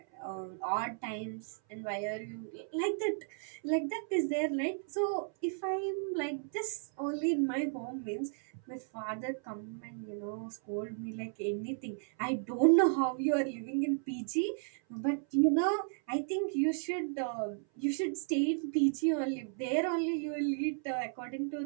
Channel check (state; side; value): silent; left; 55 dB below the other